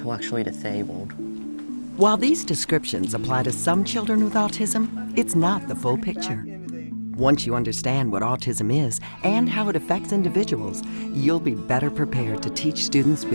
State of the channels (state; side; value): inverted; both; correlation -1.00